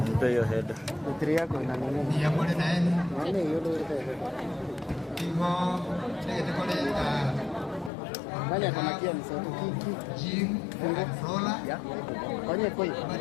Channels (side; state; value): right; drops out; at 7.9 s